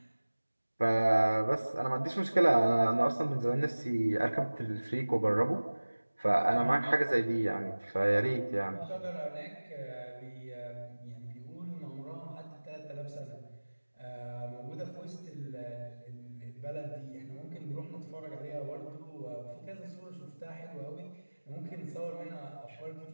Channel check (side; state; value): both; inverted; correlation -1.00